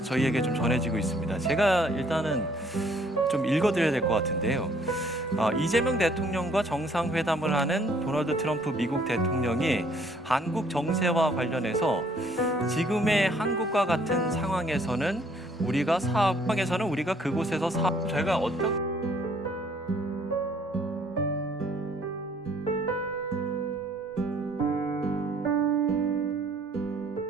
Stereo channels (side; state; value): both; normal; correlation 0.62